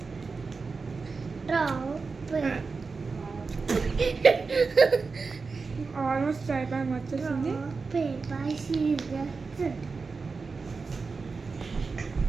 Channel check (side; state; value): left; quieter; 4.5 dB